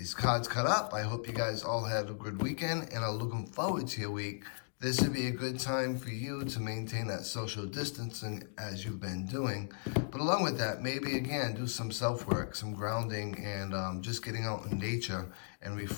cards cut up. I hope you guys all had a good weekend and are looking forward to your week. This would be a good time for you to maintain that social distancing as you've been doing. But along with that, maybe again, do some self-work, some grounding, and just getting out in nature and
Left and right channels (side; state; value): right; silent; digital silence